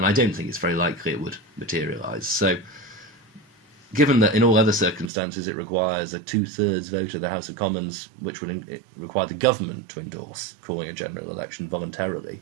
I don't think it's very likely it would materialise. So, given that in all other circumstances it requires a 2/3 vote of the House of Commons, which would require the government to endorse calling a general election voluntarily,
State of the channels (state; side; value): drops out; left; at 5.1 s